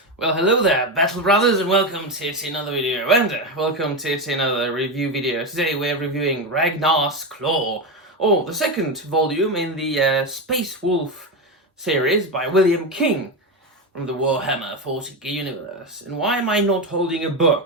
Well, hello there, Battle Brothers, and welcome to yet another video, and welcome to yet another review video. Today we're reviewing Ragnar's Claw, or the second volume in the Space Wolf series by William King from the Warhammer 40k universe. And why am I not holding a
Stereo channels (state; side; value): normal; both; correlation 0.14